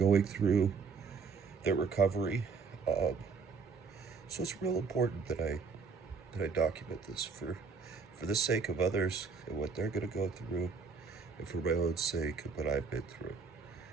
through, their recovery. So it's real important that I document this for the sake of others and what they're going to go through, and for my own sake and what I've been through.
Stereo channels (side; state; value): left; quieter; 5.1 dB